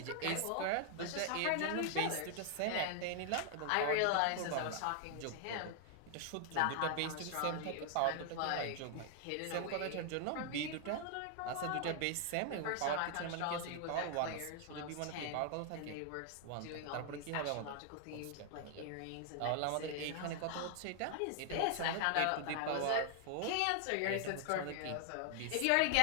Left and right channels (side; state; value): both; different; correlation 0.00